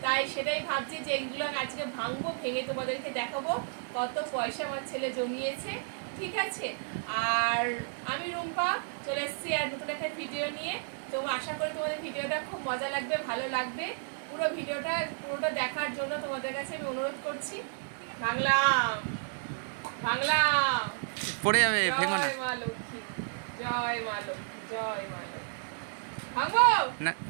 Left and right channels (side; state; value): left; silent; 57 dB below the other